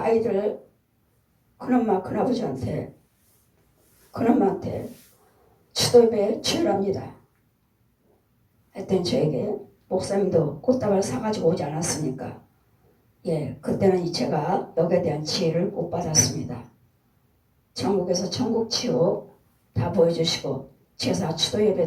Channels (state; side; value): identical; both; correlation 1.00